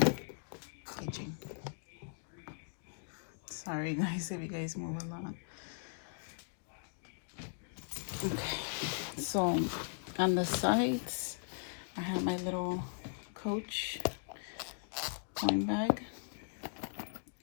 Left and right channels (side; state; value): right; silent; digital silence